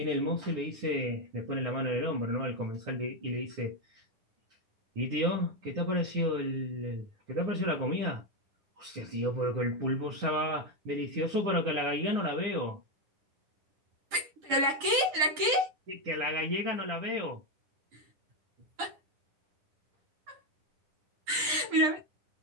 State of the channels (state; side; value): late; left; 10 ms